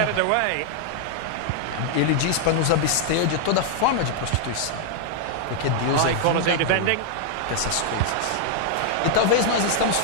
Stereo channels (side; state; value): both; different; correlation 0.00